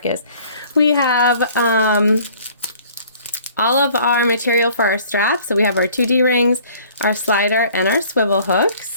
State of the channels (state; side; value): inverted; both; correlation -0.53